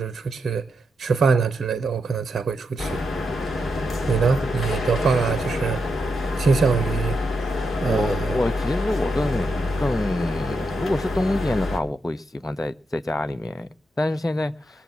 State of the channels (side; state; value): both; normal; correlation 0.84